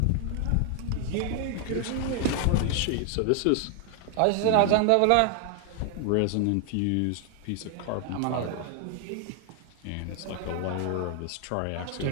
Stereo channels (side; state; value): both; different; correlation 0.00